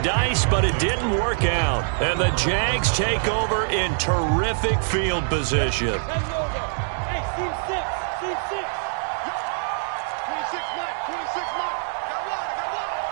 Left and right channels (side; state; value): left; silent; digital silence